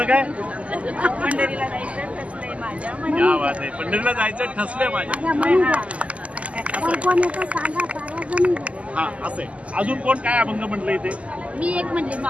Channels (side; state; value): left; late; 0.065 ms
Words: काय? पंढरीला जायचं ठसलंय माझ्या मनी. क्या वाद आहे. पंढरीला जायचं ठसलंय माझ्या. हा, असं आहे. अजून कोण काय अभंग म्हटलं इथे? मी एक म्हणले